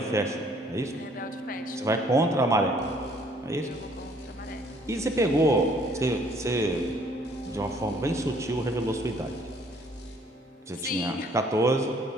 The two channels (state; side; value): normal; both; correlation 0.61